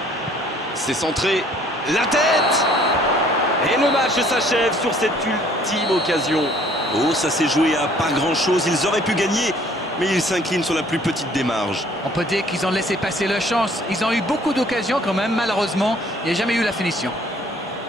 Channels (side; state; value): both; normal; correlation 0.58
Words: C'est centré. La tête. Et le match s'achève sur cette ultime occasion. Oh, ça s'est joué à pas grand-chose. Ils auraient pu gagner, mais ils s'inclinent sur la plus petite des marges. On peut dire qu'ils ont laissé passer leur chance. Ils ont eu beaucoup d'occasions quand même, malheureusement. Il n'y a jamais eu la finition.